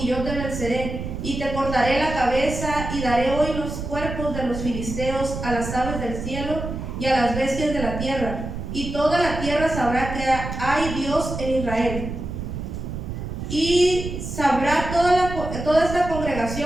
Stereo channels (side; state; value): right; noise; rumble, 6 dB below the sound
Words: yo te venceré, y te cortaré la cabeza, y daré hoy los cuerpos de los filisteos a las aves del cielo y a las bestias de la tierra, y toda la tierra sabrá que hay Dios en Israel. Y sabrá toda esta